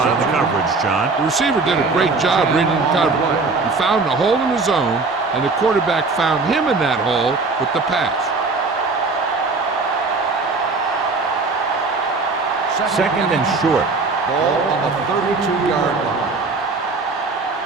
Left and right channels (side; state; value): left; quieter; 3.9 dB